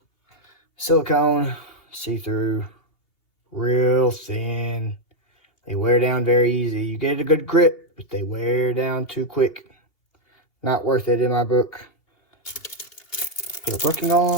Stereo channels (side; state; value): right; late; 3.0 ms